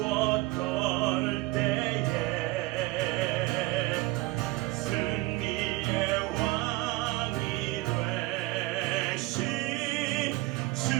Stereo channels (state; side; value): quieter; left; 20.5 dB